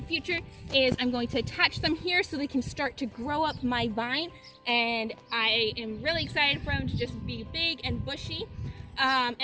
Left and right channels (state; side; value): identical; both; correlation 1.00